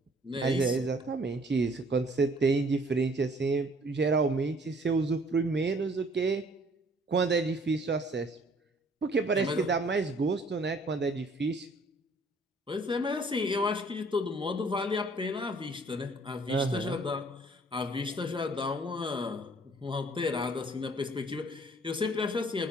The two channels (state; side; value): normal; both; correlation 0.58